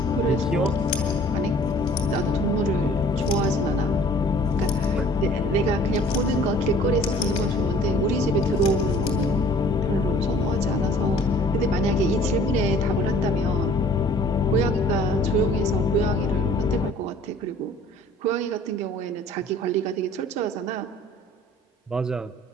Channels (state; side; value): normal; both; correlation 0.53